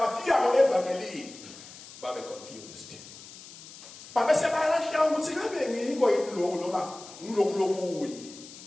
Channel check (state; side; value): noise; left; hiss, 17 dB below the sound